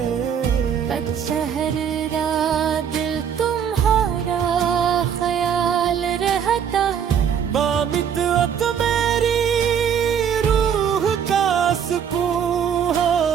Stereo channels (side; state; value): left; quieter; 8.0 dB